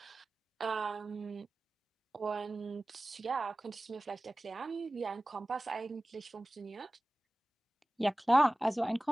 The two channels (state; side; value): normal; both; correlation 0.97